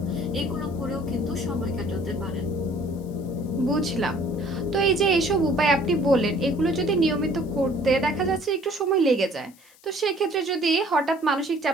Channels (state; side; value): noise; left; hiss, 27 dB below the sound